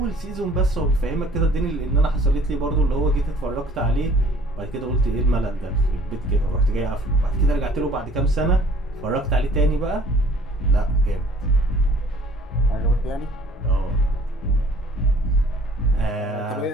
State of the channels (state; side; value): normal; both; correlation 0.54